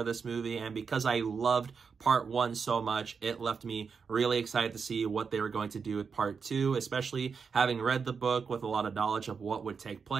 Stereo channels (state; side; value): quieter; left; 5.7 dB